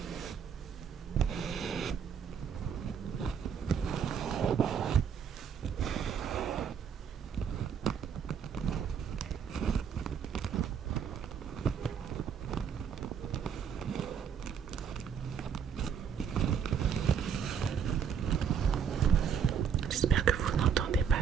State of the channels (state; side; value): quieter; left; 7.4 dB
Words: J'espère que vous n'entendez